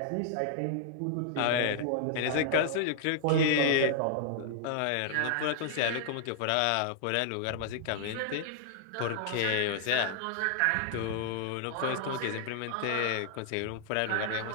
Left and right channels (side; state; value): both; different; correlation -0.01